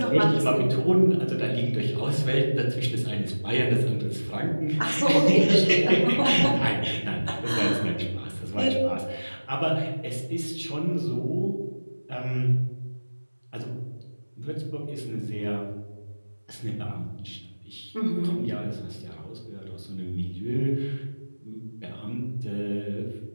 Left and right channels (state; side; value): inverted; both; correlation -1.00